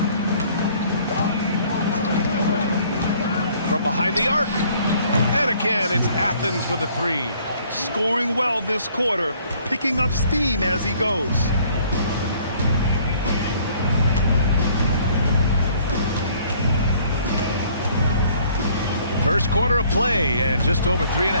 From behind the arc. And again, it's Athens with a 3. Scoring well this quarter, picking up steam as he goes. First quarter of play, and just over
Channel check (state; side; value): inverted; both; correlation -0.59